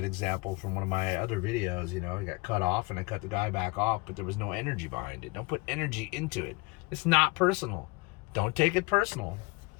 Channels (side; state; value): right; quieter; 25.6 dB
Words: example from one of my other videos, I got cut off and I cut the guy back off, but there was no energy behind it. Don't put energy into it. It's not personal. Don't take it personal.